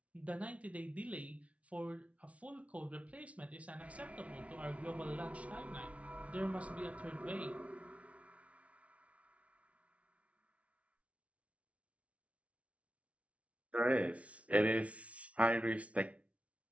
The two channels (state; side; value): late; left; 0.064 ms